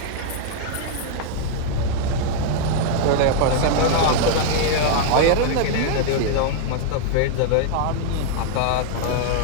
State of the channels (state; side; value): different; both; correlation -0.01